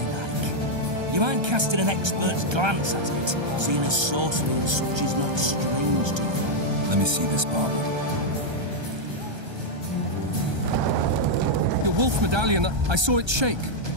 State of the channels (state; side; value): late; left; 1.3 ms